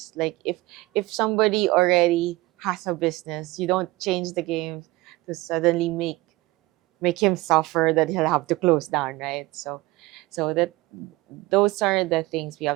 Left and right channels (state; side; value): quieter; left; 20.0 dB